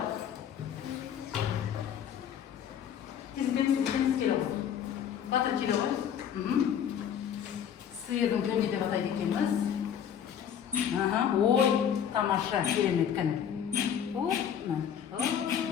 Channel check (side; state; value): right; quieter; 8.8 dB